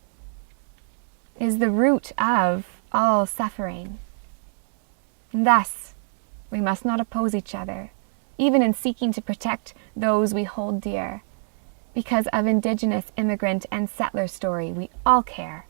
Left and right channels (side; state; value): left; silent; 62 dB below the other